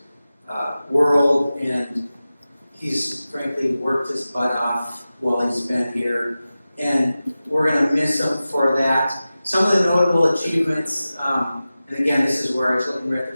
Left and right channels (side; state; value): both; inverted; correlation -0.95